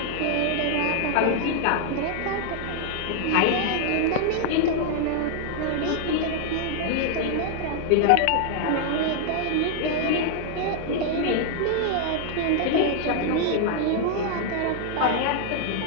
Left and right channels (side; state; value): both; different; correlation 0.00